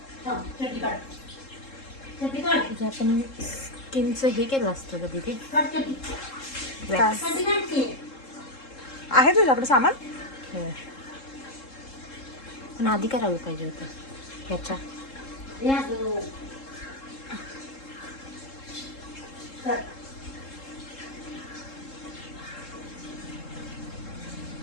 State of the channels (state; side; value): late; right; 3.7 ms